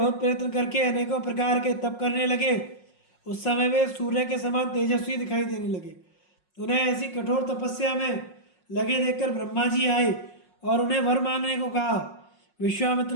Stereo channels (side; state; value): right; late; 5.5 ms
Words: प्रयत्न करके अनेकों प्रकार के तप करने लगे, उस समय वे सूर्य के समान तेजस्वी दिखाई देने लगे। उन्हें ऐसी कठोर तपस्या में लगे देखकर ब्रह्मा जी आए और उन्हें वर मांगने को कहा। विश्वामित्र